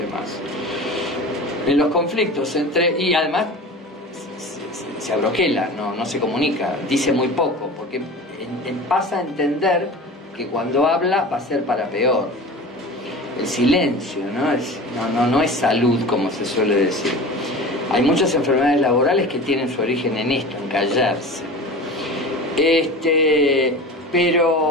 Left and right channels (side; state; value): both; normal; correlation 0.35